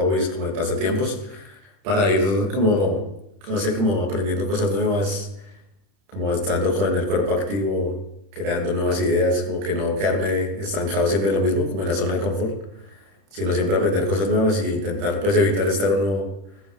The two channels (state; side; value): late; left; 31 ms